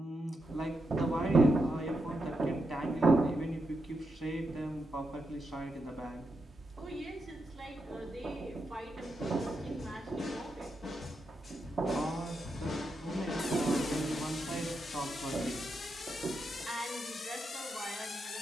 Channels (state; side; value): normal; both; correlation 0.85